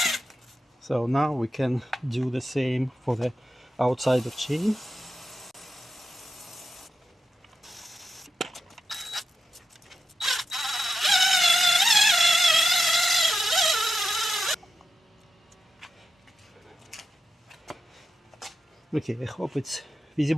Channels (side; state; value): both; normal; correlation 0.89